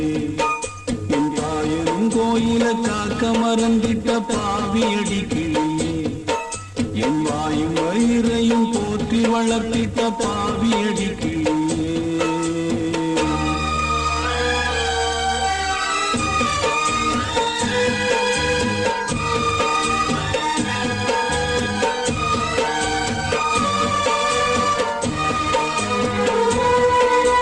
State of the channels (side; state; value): both; identical; correlation 1.00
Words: என் தாயிரும் கோயில காக்க மறந்திட்ட பாவியடி கிளியே, என் வாயும் வயிறையும் போற்றி வளர்த்திட்ட பாவியடி கிளியே.